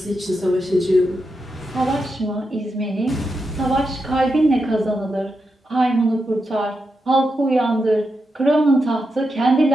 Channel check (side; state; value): both; normal; correlation 0.86